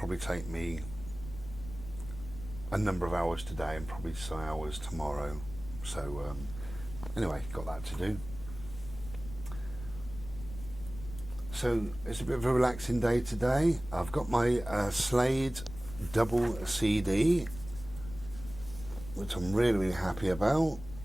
take me a number of hours today and probably some hours tomorrow. So anyway, got that to do. So it's a bit of a relaxing day today. I've got my Slade double CD, which I'm really, really happy about.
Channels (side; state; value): left; noise; rumble, 13 dB below the sound